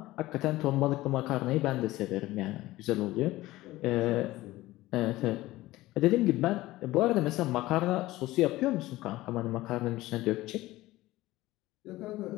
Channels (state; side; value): quieter; right; 17.5 dB